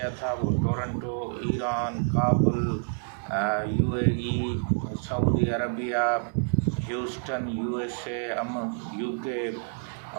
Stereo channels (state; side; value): silent; left; digital silence